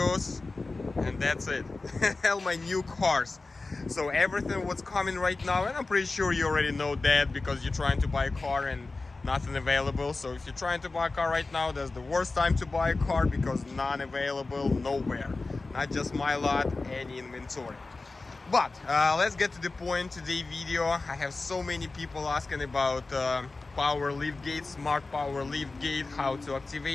and that's it. All my new cars. So everything what's coming right now, and I'm pretty sure you already know that because you're trying to buy a car and nothing available. So if you're trying to buy a car right now, that's the worst time to buy a car because none available nowhere. Not just my lot, any inventory. But let's get to the point. Today video, I have so many people asking about power lift gate, smart power lift gate, how to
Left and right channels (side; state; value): right; quieter; 3.5 dB